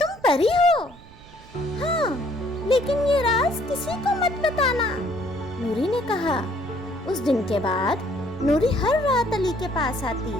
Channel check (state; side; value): noise; right; rumble, 22 dB below the sound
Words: परी हो? हाँ, लेकिन ये राज किसी को मत बताना, नूरी ने कहा। उस दिन के बाद नूरी हर रात अली के पास आती,